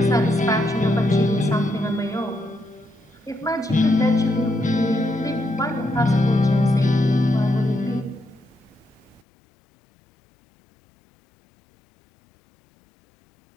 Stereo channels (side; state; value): right; drops out; at 9.2 s